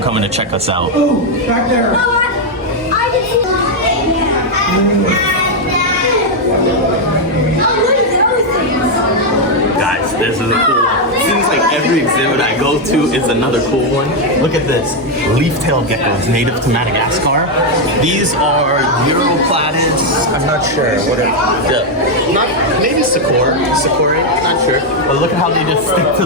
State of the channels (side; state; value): both; normal; correlation 0.02